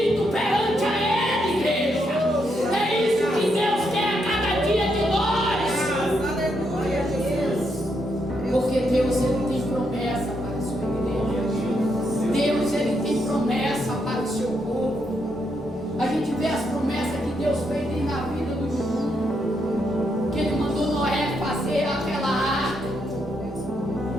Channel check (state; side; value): normal; both; correlation 0.79